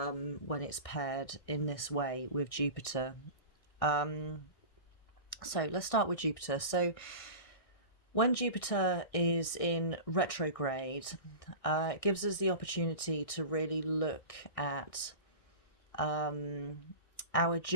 it's paired in this way with Jupiter. So let's start with Jupiter. So when Jupiter is in retrograde, it gives us the opportunity to really look at our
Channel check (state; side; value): late; right; 1.6 ms